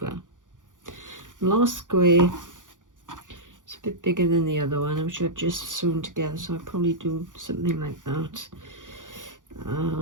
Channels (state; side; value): late; left; 0.88 ms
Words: Last square, it's a bit bigger than the other one, which I've just sewn together, so I'll probably do something like that.